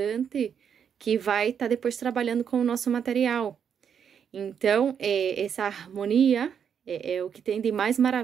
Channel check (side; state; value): left; quieter; 7.7 dB